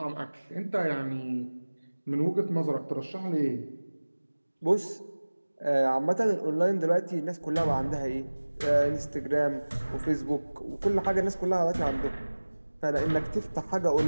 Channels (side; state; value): both; inverted; correlation -1.00